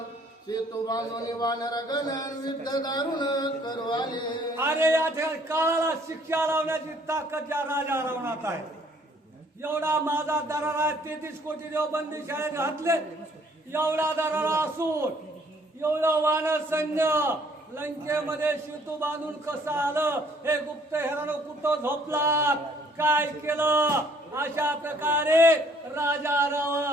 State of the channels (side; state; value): both; normal; correlation 0.61